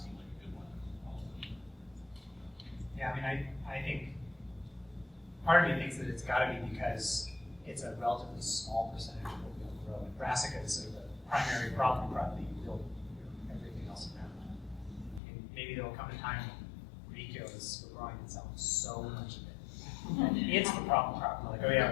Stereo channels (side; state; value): right; drops out; at 15.2 s